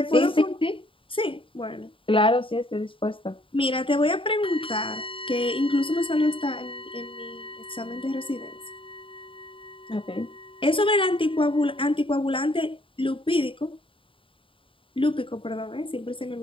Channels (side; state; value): right; late; 0.25 ms